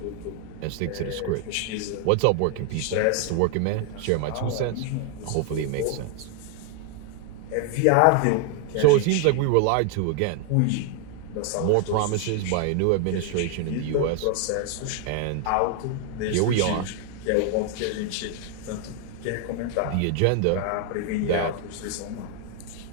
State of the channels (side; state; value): both; different; correlation 0.00